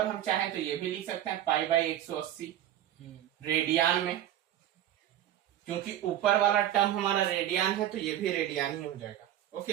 हम चाहें तो ये भी लिख सकते हैं पाई बाई 180 रेडियन में, क्योंकि ऊपर वाला टर्म हमारा रेडियन है तो ये भी रेडियन ही हो जाएगा।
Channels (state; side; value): quieter; left; 12.0 dB